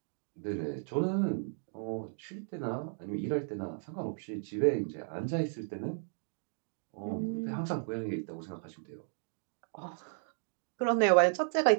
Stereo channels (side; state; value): left; silent; digital silence